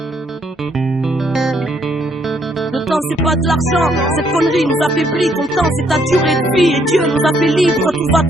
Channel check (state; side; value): normal; both; correlation 0.70